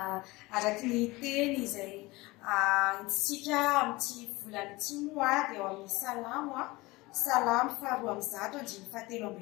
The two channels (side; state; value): right; quieter; 21.7 dB